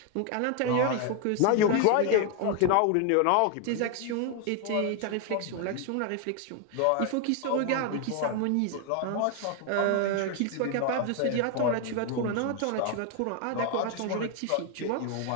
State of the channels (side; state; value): both; different; correlation 0.01